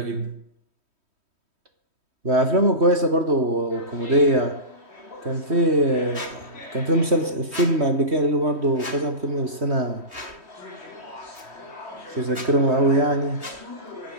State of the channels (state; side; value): late; left; 3.1 ms